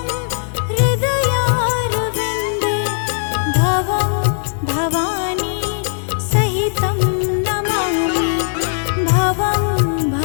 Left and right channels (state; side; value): silent; right; digital silence